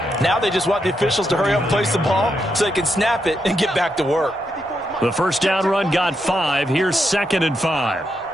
Now they just want the officials to hurry up and place the ball so they can snap it and get back to work. The first down run got 5. Here's 2nd and 5.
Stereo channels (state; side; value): normal; both; correlation 0.82